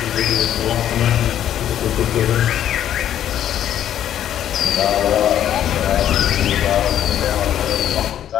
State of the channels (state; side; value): quieter; right; 10.8 dB